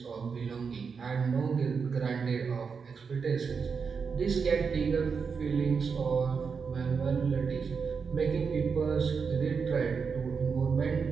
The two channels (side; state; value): left; quieter; 5.7 dB